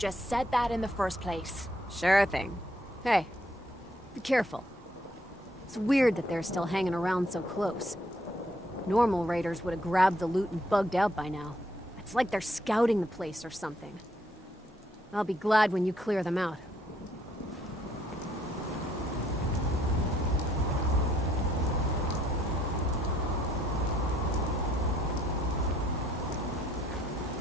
said that in the first place. Sure thing. Hey, be careful. It's weird that they're still hanging around so close. Normal raiders would have grabbed the loot and bugged out by now. It's like they're scouting the place or something. I'll be glad when you clear them out.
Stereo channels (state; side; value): normal; both; correlation 0.69